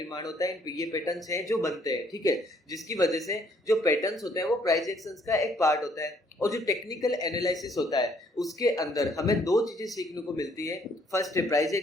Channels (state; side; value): normal; both; correlation 0.65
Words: होता है। ये पैटर्न्स हैं जो बनते हैं, ठीक है, जिसकी वजह से जो पैटर्न्स होते हैं वो प्राइस एक्शंस का एक पार्ट होता है। और जो टेक्निकल एनालिसिस होता है उसके अंदर हमें दो चीजें सीखने को मिलती है। फर्स्ट है प्राइस